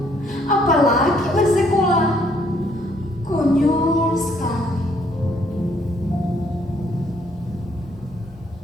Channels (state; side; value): normal; both; correlation 0.67